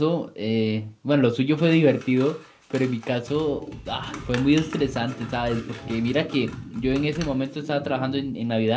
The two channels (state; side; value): identical; both; correlation 1.00